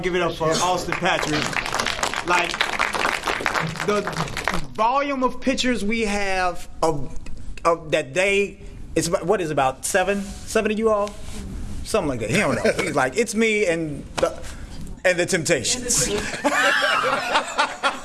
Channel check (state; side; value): identical; both; correlation 1.00